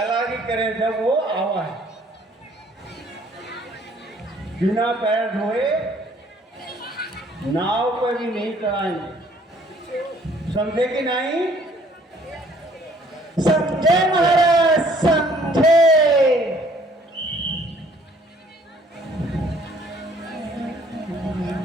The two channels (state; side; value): normal; both; correlation 0.59